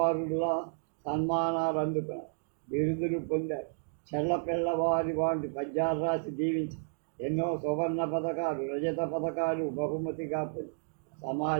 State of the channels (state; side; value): silent; left; digital silence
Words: సన్మానాలు అందుకున్నారు, బిరుదులు పొందారు. చెల్లపిల్లవారి వాటి పద్యాలు రాసి దీవించి ఎన్నో సువర్ణ పథకాలు, రజత పథకాలు బహుమతిగా పొంది